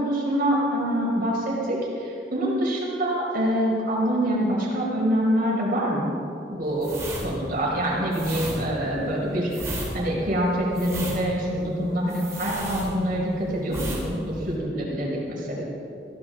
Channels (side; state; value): both; normal; correlation 0.56